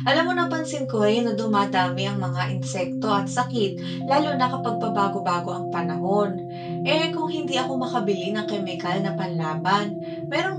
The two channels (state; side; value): identical; both; correlation 1.00